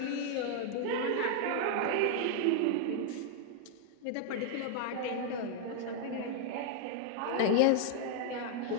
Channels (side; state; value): both; different; correlation 0.00